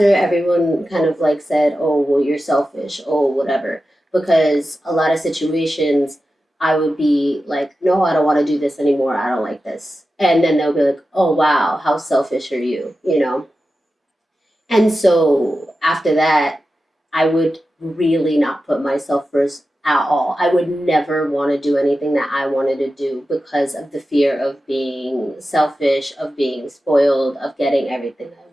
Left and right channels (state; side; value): normal; both; correlation 0.92